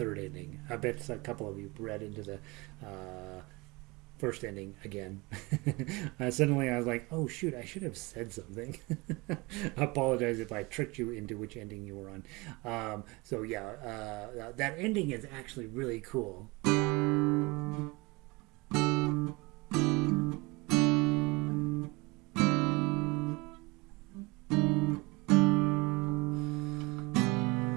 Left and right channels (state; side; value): quieter; left; 24.9 dB